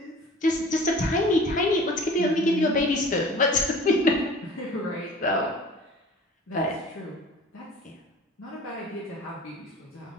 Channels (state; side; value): normal; both; correlation 0.44